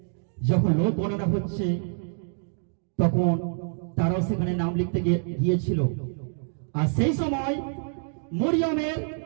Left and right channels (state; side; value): silent; left; 56 dB below the other